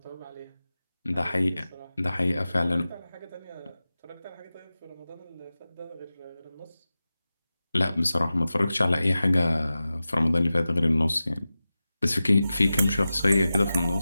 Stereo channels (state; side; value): inverted; both; correlation -0.94